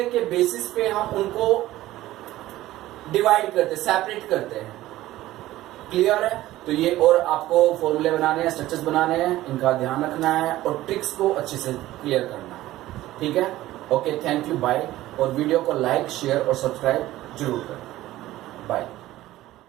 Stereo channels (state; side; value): quieter; left; 15.7 dB